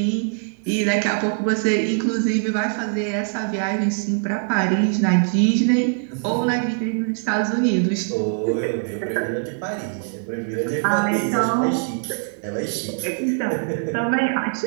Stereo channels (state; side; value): silent; left; digital silence